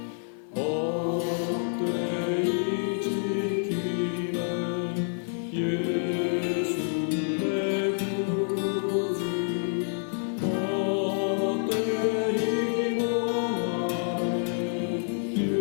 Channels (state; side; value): silent; right; digital silence